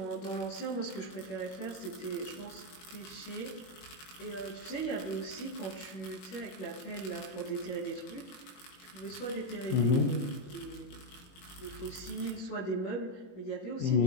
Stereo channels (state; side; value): late; right; 21 ms